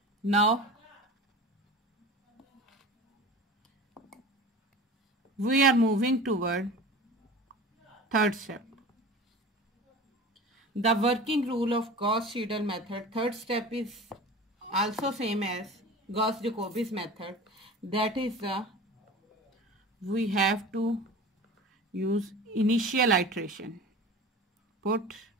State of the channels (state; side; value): normal; both; correlation 0.36